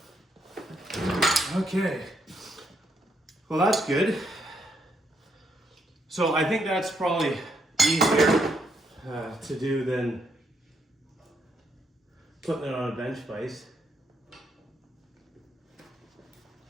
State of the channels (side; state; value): both; normal; correlation 0.76